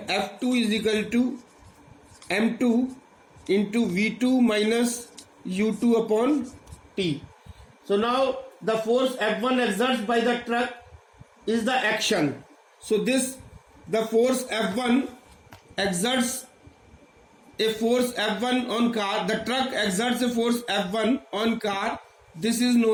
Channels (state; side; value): identical; both; correlation 1.00